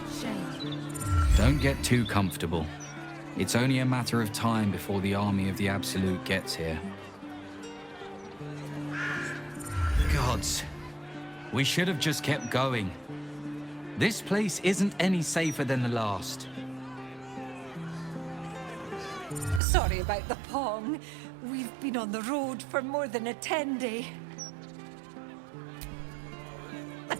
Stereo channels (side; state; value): left; drops out; at 19.6 s